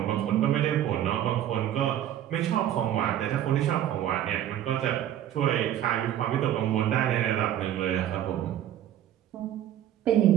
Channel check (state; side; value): quieter; left; 11.4 dB